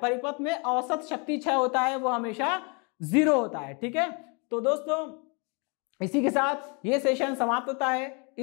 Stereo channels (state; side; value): quieter; right; 33.2 dB